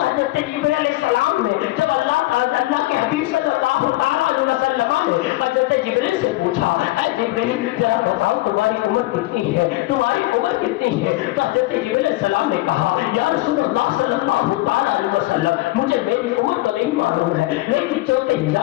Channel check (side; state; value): right; quieter; 19.0 dB